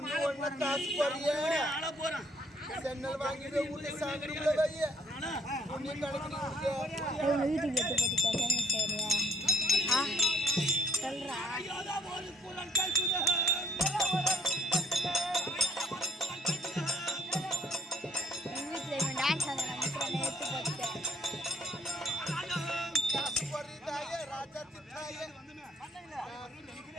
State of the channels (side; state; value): both; normal; correlation 0.65